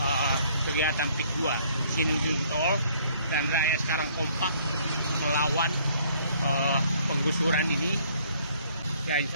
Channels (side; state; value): both; inverted; correlation -0.61